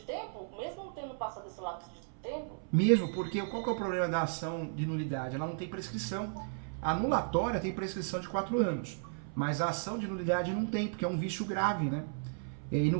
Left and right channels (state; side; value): silent; left; 55 dB below the other